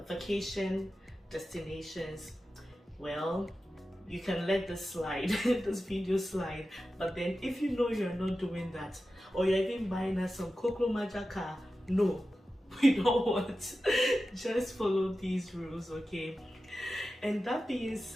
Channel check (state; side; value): normal; both; correlation 0.93